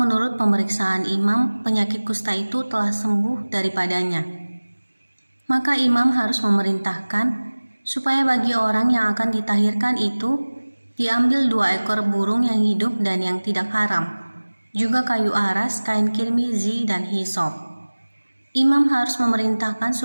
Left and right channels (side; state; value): both; inverted; correlation -1.00